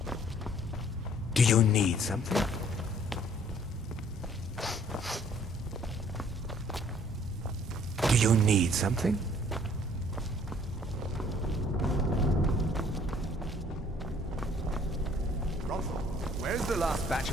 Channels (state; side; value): normal; both; correlation 0.59